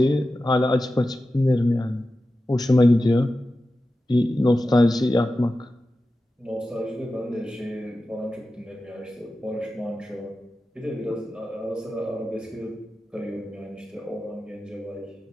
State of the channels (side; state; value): both; normal; correlation 0.93